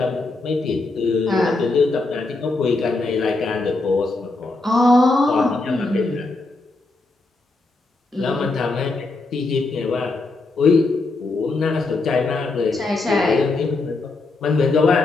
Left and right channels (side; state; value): right; quieter; 3.3 dB